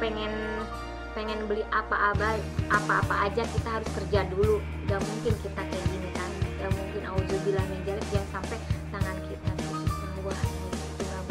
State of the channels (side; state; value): both; identical; correlation 1.00